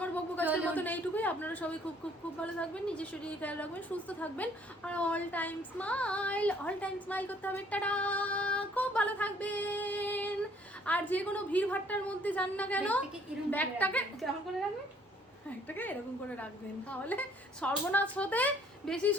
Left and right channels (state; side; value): normal; both; correlation 0.61